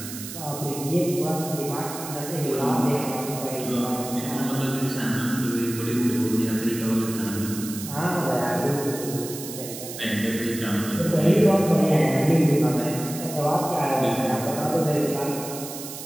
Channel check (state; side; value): noise; right; hiss, 10 dB below the sound